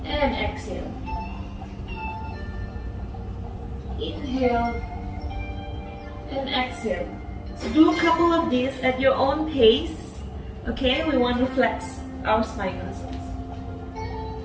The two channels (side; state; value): both; identical; correlation 1.00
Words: and exhale. Inhale and exhale. So do a couple of these at your own pace, okay? We want to flex our spine muscles.